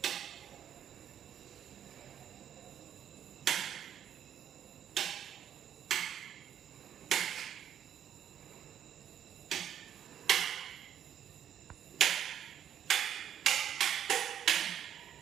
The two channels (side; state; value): left; quieter; 9.6 dB